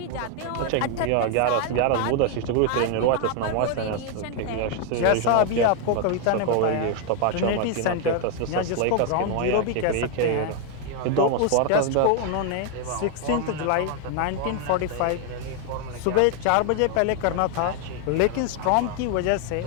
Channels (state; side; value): different; both; correlation 0.01